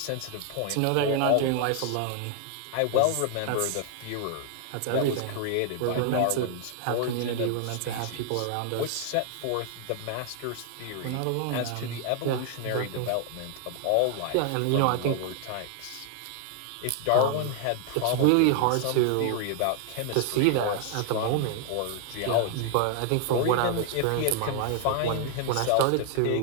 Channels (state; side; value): different; both; correlation 0.00